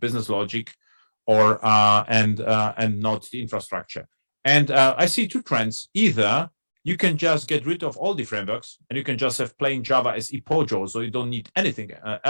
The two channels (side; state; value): both; inverted; correlation -1.00